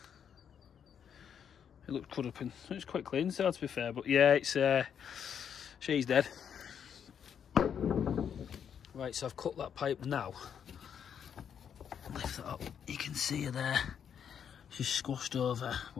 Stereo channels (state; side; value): quieter; right; 8.1 dB